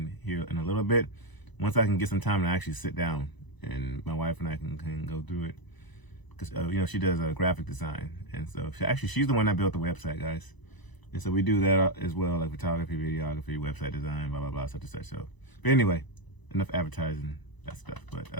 here in a little bit. Once I can get some time to actually sit down, and my wife and I can go through it. Because, you know, she does graphic design. And so she's the one that built the website, guys. And so we do that as well, like photography, videography, website design, blah, blah, blah, such and such. So, but anyway, enough advertising, that stuff. But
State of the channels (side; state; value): right; late; 1.0 ms